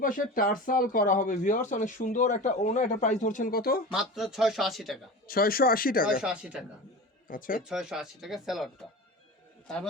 পাশে টার্সাল করা হবে ভিউয়ার্স, অনেক সুন্দর একটা ওনা। এটা প্রাইস ধরছেন কত? মাত্র 680 টাকা। 680 টাকা। 680 টাকা। আচ্ছা, এই 680 টাকা স্যালাডটা।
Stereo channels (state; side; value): normal; both; correlation 0.31